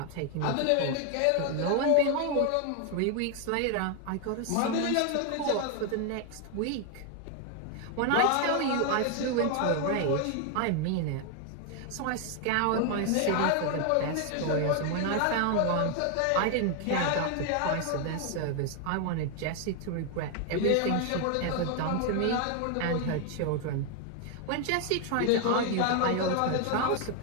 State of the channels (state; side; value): different; both; correlation 0.01